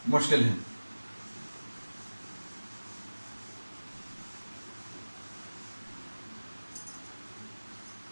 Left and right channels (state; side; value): inverted; both; correlation -1.00